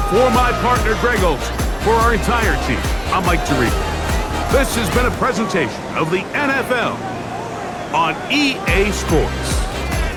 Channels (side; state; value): both; identical; correlation 1.00